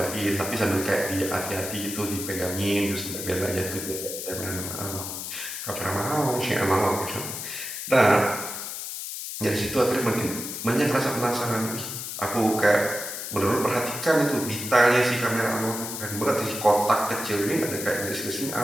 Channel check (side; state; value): left; noise; hiss, 6 dB below the sound